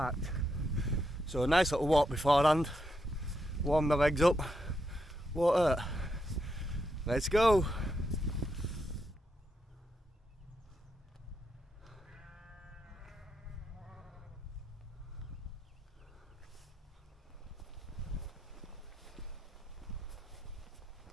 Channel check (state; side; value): normal; both; correlation 0.82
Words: So a nice little walk beforehand, warm my legs up, won't hurt. Let's go!